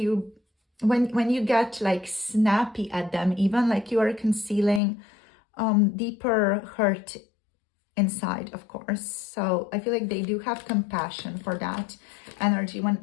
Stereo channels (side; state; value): right; drops out; at 4.8 s